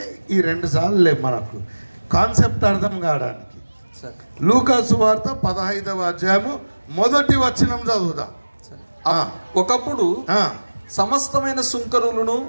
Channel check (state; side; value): inverted; both; correlation -1.00